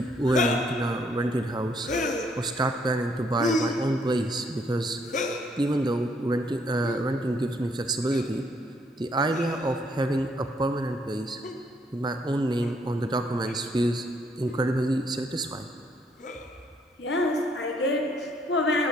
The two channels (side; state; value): both; normal; correlation 0.69